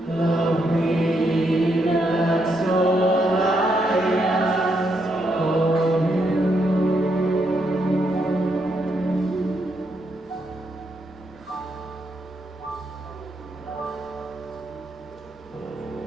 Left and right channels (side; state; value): both; normal; correlation 0.78